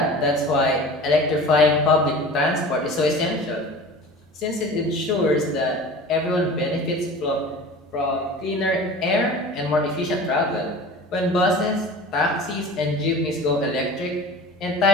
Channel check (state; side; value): normal; both; correlation 0.38